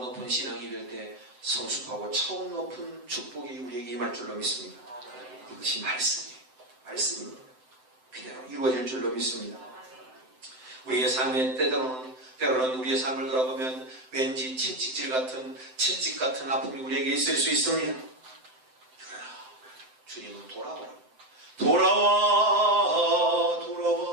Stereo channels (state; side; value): late; left; 7.8 ms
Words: 높은 신앙이 될 때 성숙하고 차원 높은 축복이 우리에게 임할 줄로 믿습니다. 이것이 말씀입니다. 그대로 이루어질 줄로 믿습니다. 우리의 삶에 때로는 우리의 삶을 돌아보면 왠지 채찍질 같은 아픔이 우리에게 있을 수 있습니다. 그러나 주님은 돌아와